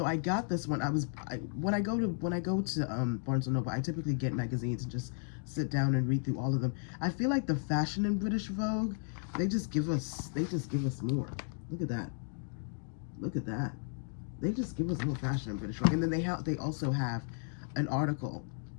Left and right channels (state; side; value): silent; right; 55 dB below the other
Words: I got this one. When I go to Barnes & Noble, I typically get magazines and just sit down and read through all of them. I feel like the fashion in British Vogue, they just give us more. Look at that. Look at that. They just give us more fashion in British Vogue. And then they also have an article